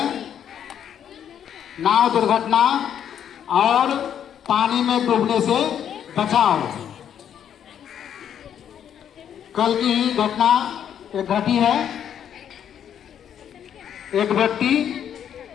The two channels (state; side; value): quieter; right; 9.2 dB